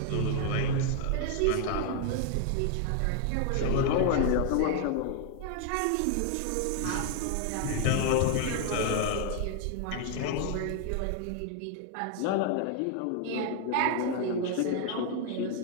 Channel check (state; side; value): different; both; correlation 0.00